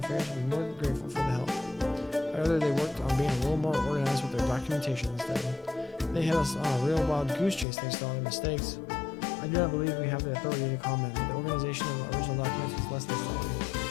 will be more than grateful for the help. However, they worked on being a little more organized with their documentation instead. They had us on a real wild goose chase thanks to all their mistakes. I do not believe we have the authority to comment, but the organization of the original documents was less than stellar.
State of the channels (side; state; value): right; drops out; at 7.7 s